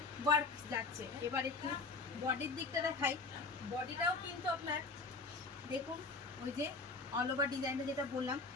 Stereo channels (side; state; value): right; quieter; 3.8 dB